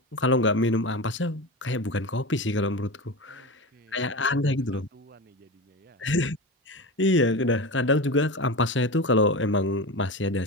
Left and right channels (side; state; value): both; normal; correlation 0.24